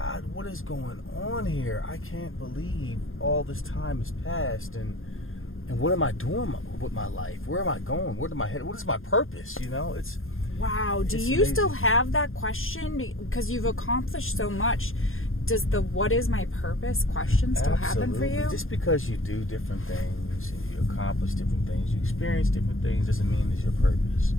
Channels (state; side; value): late; right; 0.60 ms